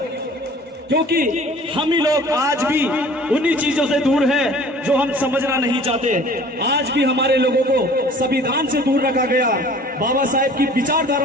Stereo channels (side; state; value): both; normal; correlation 0.48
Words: क्योंकि हम ही लोग आज भी उन्हीं चीजों से दूर हैं जो हम समझना नहीं चाहते। आज भी हमारे लोगों को संविधान से दूर रखा गया, बाबा साहेब की